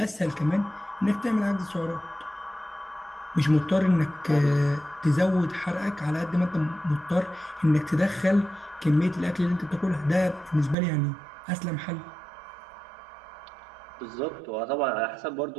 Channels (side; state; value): left; drops out; at 10.8 s